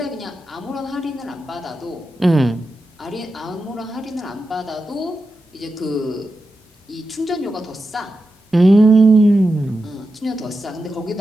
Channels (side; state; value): both; normal; correlation 0.90